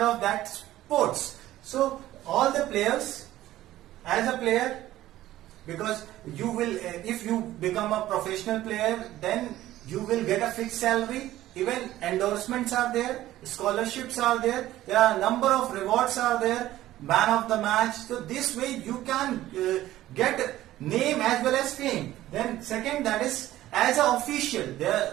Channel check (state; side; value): quieter; left; 14.7 dB